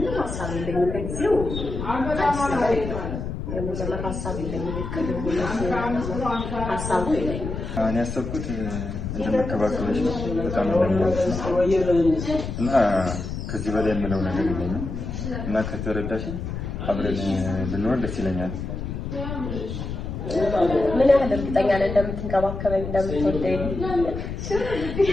እኔ ያሰብኩት እንደመከባከብሽ ነው። በጣም እና ከዚህ በላይ የምለው ነገር የለኝም እና ከተረዳሽ አብረን ብንሆን ደስ ይለኛል። ምን ያህል እርግጠኛ ነህ እንደምትንከባከበኝ እንደምትወደኝ?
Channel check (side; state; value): left; noise; rumble, 6 dB below the sound